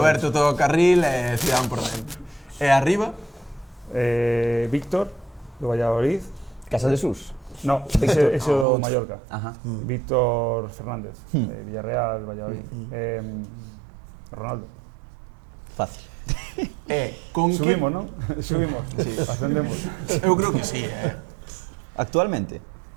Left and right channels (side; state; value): left; drops out; at 8.7 s